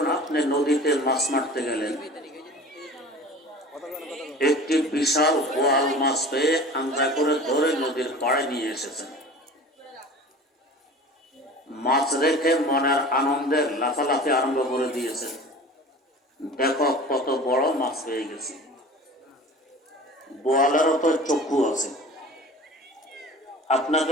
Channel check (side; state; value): both; normal; correlation 0.40